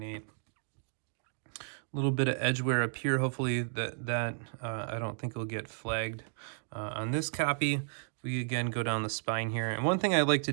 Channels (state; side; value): silent; left; digital silence